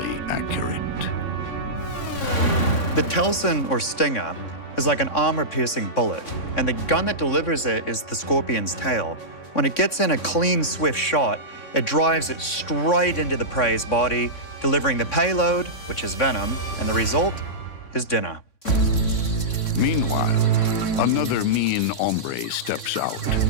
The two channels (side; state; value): right; late; 3.6 ms